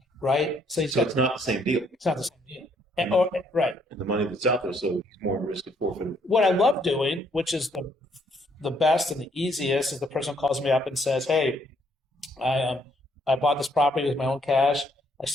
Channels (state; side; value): normal; both; correlation 0.68